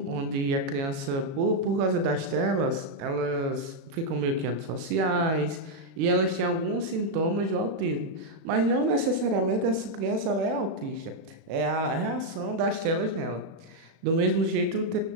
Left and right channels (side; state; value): left; late; 36 ms